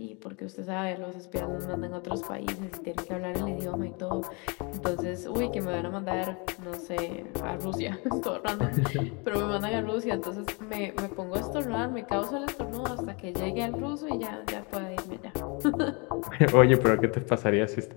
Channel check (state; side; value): quieter; right; 31.3 dB